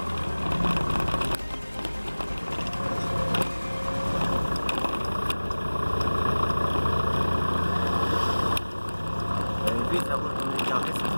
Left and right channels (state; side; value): inverted; both; correlation -1.00